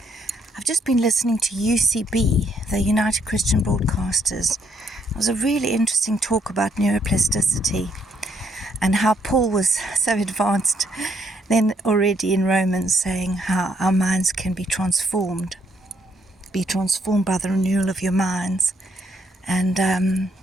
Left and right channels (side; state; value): both; normal; correlation 0.71